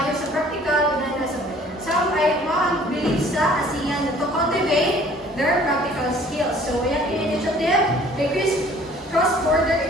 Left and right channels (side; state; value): both; normal; correlation 0.53